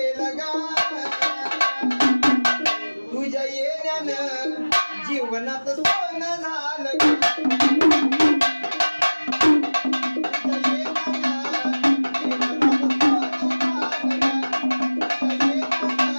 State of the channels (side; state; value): both; inverted; correlation -1.00